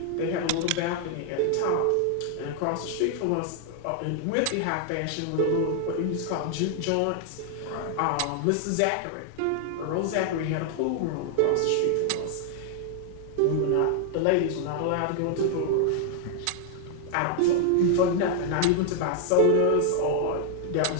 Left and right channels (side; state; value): both; different; correlation 0.00